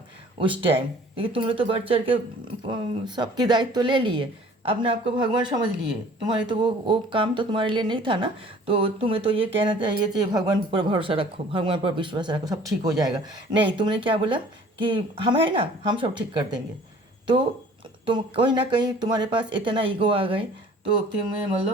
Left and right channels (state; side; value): normal; both; correlation 0.51